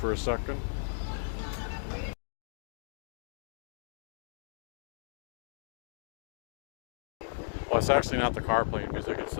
a second. Well, it's actually not the car playing music, it's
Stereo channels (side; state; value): right; silent; digital silence